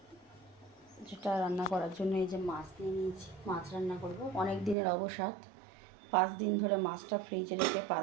যেটা রান্না করার জন্য এই যে মাছ নিয়ে নিয়েছি। মাছ রান্না করব, অনেক দিনের অবসাদ। 5 দিন ধরে মাছটা ফ্রিজে রেখে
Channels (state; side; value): drops out; left; at 4.8 s